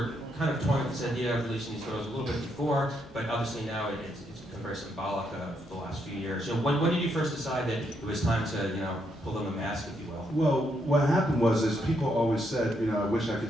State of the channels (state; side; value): normal; both; correlation 0.77